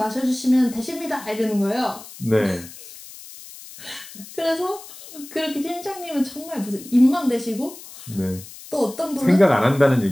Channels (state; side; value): noise; left; hiss, 17 dB below the sound